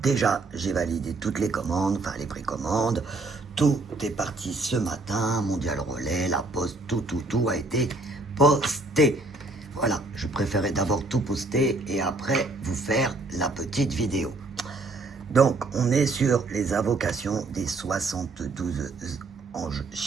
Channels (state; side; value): quieter; left; 3.1 dB